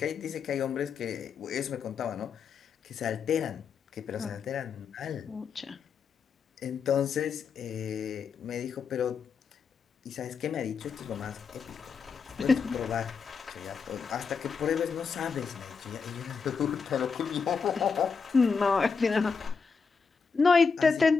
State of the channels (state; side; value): quieter; right; 5.5 dB